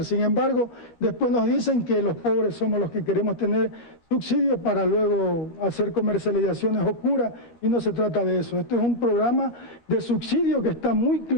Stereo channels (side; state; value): right; late; 13 ms